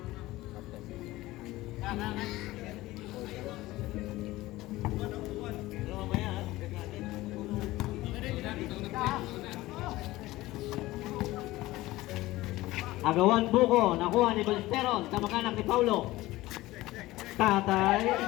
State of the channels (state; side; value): quieter; right; 18.0 dB